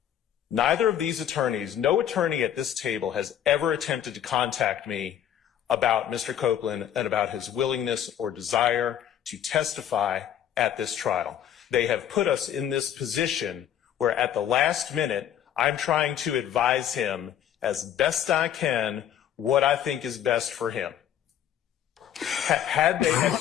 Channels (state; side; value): quieter; right; 10.2 dB